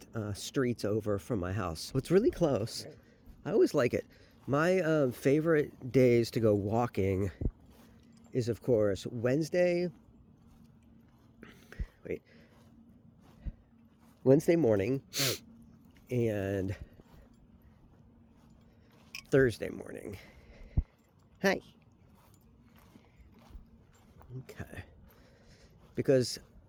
street's over from my house. So it's really close. I always like it. My favorite days to go walking is, of course, Wednesday morning and Thursday morning. Hi. Okay. Because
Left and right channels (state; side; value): identical; both; correlation 1.00